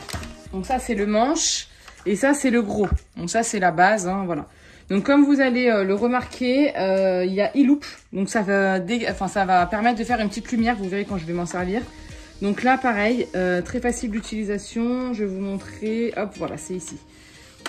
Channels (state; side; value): identical; both; correlation 1.00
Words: Donc ça, c'est le manche. Et ça, c'est le gros. Donc ça, c'est la base, hein, voilà. Donc comme vous allez le remarquer, il y a e-loop. Donc ça va permettre de faire une petite lumière. Vous verrez quand je vais m'en servir. Donc là, pareil, très facile d'utilisation. Je vais vous montrer. Hop, voilà, c'est ici.